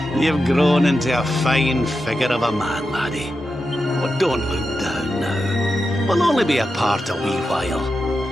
You've grown into a fine figure of a man, laddie. Oh, don't look down now. We'll only be apart a wee while.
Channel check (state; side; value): normal; both; correlation 0.89